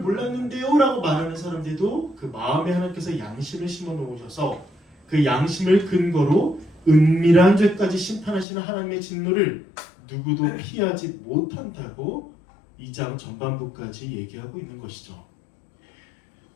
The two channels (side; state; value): right; drops out; at 8.5 s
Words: 라고 말하는 사람들도 그 마음에 하나님께서 양심을 심어 놓으셔서 그 양심을 근거로 은밀한 죄까지 심판하시는 하나님의 진노를 누구도 피하지 못한다고 2장 전반부까지 얘기하고 있는 것이죠.